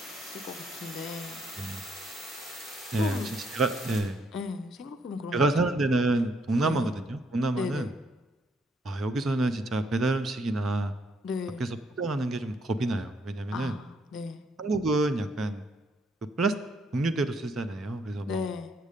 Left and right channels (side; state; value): both; normal; correlation 0.72